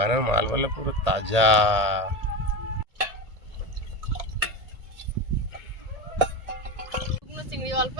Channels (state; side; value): late; left; 1.8 ms